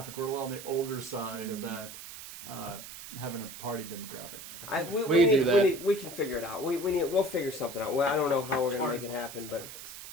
We're a little on the older side of that, having a party demographic. We can figure it out. We'll figure something out. Well, I don't know how we're gonna make it happen, but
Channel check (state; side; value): noise; right; hiss, 12 dB below the sound